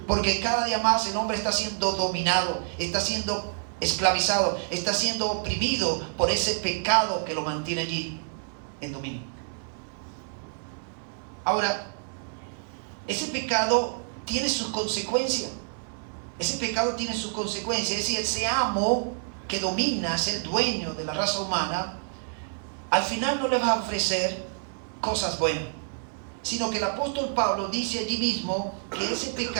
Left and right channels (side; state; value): left; silent; 60 dB below the other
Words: porque cada día más el hombre está siendo dominado, está siendo esclavizado, está siendo oprimido por ese pecado que lo mantiene allí en dominio. Ahora, ese pecado tiene sus consecuencias. Ese pecado tiene sus consecuencias. Es decir, ese amo que domina, es el dueño de la raza humana, al final no le va a ofrecer cosas buenas, sino que el apóstol Pablo dice allí mismo que ese